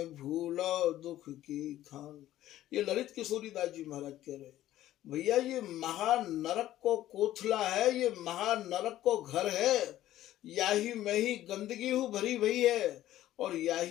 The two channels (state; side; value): quieter; right; 13.7 dB